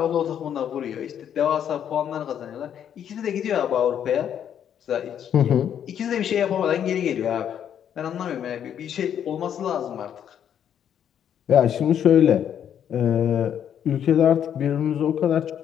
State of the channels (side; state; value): right; quieter; 9.2 dB